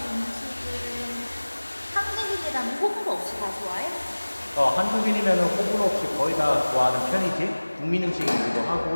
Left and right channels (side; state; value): both; inverted; correlation -1.00